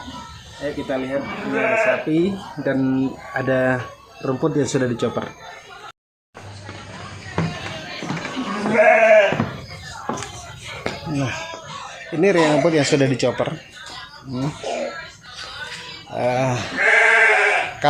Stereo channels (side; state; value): both; identical; correlation 1.00